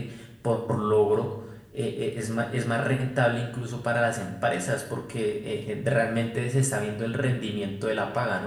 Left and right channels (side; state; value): both; identical; correlation 1.00